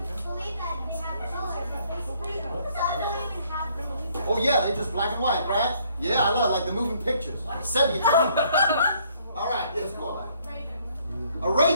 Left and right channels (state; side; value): inverted; both; correlation -0.65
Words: Oh yeah, they're just black and white, right? Yeah, I love like the moving pictures. Sepia color. All right, let's go on. A